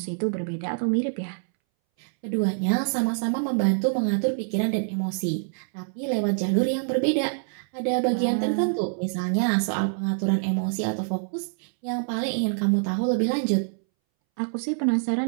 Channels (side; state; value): left; silent; 61 dB below the other